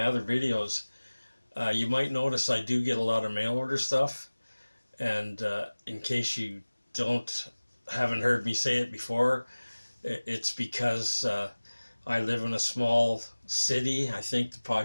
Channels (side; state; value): both; inverted; correlation -1.00